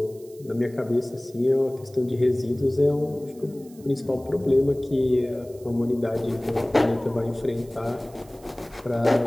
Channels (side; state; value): right; noise; hiss, 26 dB below the sound